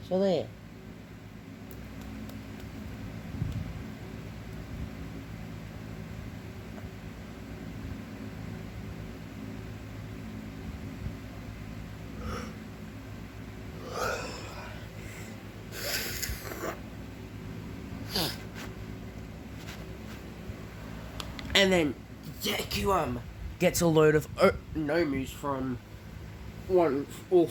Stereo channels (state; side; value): identical; both; correlation 1.00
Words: So there. And then Deku gets a load of Nomus from All